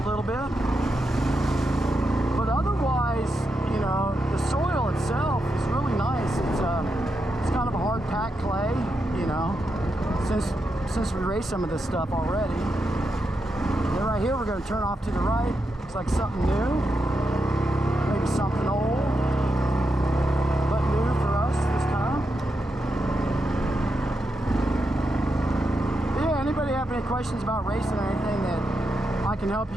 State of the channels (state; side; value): normal; both; correlation 0.85